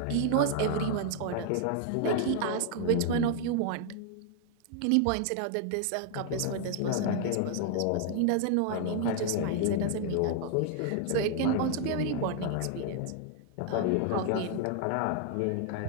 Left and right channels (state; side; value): different; both; correlation 0.00